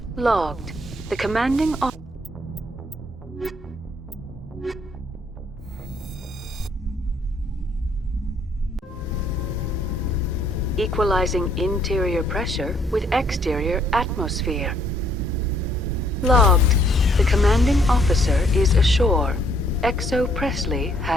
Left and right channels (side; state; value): both; normal; correlation 0.66